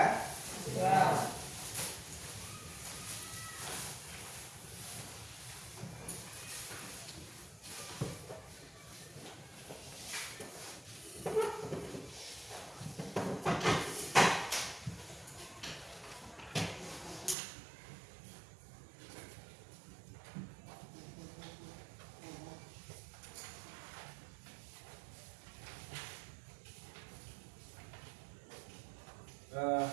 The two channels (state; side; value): drops out; left; at 17.4 s